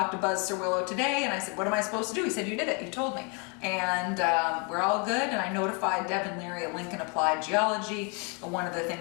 to Buzz Cerwillo today and I said, what am I supposed to do? He said, you did it, you told me. And we're all good, and I notified Devin Leary at Lincoln Applied Geology. One of the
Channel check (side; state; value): right; quieter; 34.4 dB